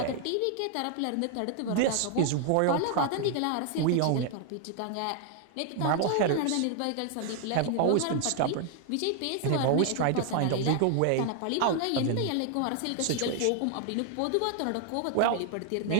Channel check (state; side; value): different; both; correlation 0.00